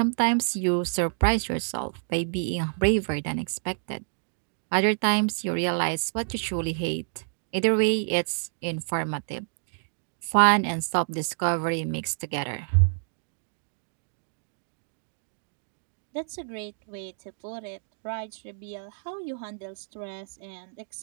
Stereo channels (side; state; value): left; silent; digital silence